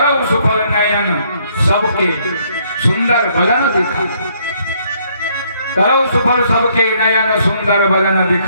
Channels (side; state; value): both; inverted; correlation -0.68